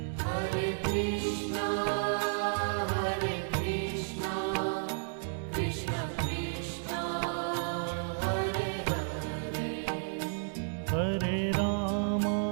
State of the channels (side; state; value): left; silent; digital silence